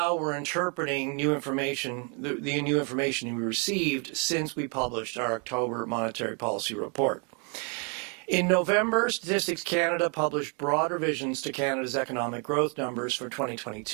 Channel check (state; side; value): quieter; left; 37.3 dB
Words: we're interpreting new information, the new information we received since we published our October monetary policy report. In November, Statistics Canada published broad revisions to Canada's economic growth numbers for